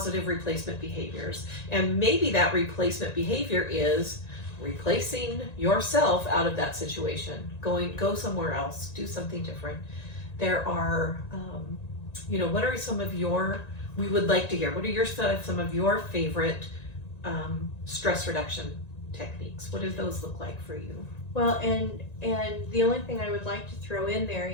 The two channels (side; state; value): right; late; 1.9 ms